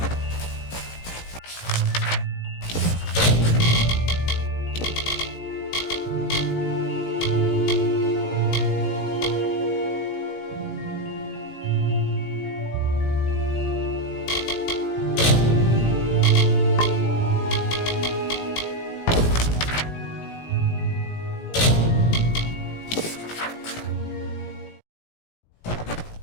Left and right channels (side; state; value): right; late; 18 ms